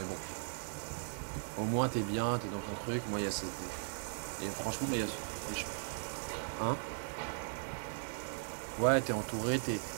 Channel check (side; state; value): left; silent; 52 dB below the other